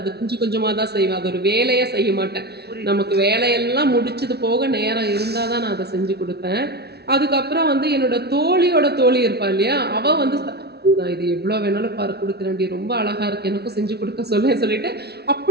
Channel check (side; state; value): left; late; 0.48 ms